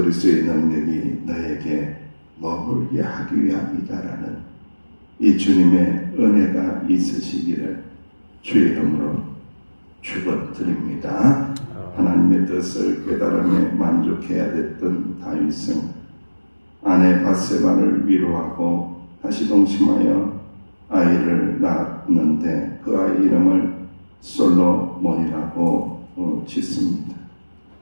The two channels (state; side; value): inverted; both; correlation -1.00